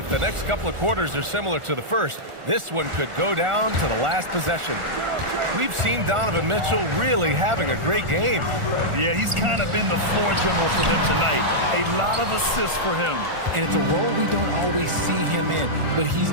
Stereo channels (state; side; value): late; left; 1.4 ms